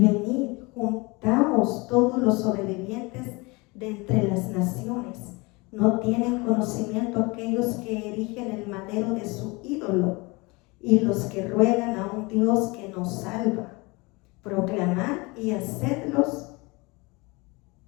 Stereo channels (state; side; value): quieter; right; 25.7 dB